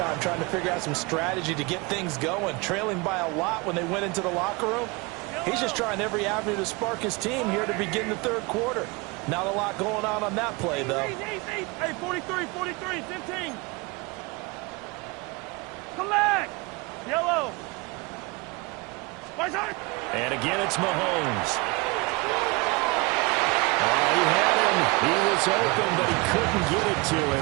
trying to figure out some strategy to get things going. Trailing by a lot when they went into the locker room. He's just trying every avenue to spark his team here to begin the third quarter. Not a lot going on that play, though. Hey, 43, 15. Come back. Yellow. And again, it's Mahomes. Oh, he had him. He was open, but he couldn't get it to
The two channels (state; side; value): quieter; left; 26.4 dB